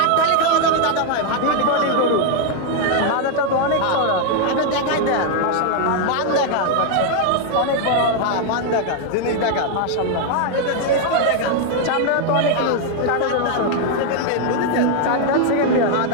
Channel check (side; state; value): both; different; correlation 0.00